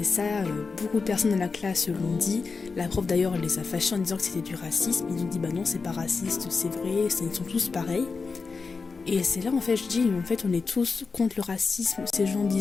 ça, beaucoup de personnes dans la classe l'ont dit. La prof d'ailleurs, elle les a fâchés en disant que c'était du racisme. Ils ont dit « Bah non, c'est pas raciste, c'est vrai, ils sont tous pareils ». Et c'est là, en fait, je dis « En fait, on est tous contre le racisme ». Ces gens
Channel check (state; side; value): quieter; right; 4.6 dB